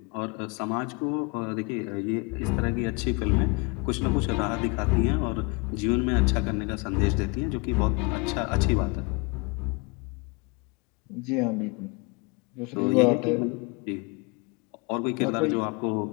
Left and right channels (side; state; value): right; quieter; 29.7 dB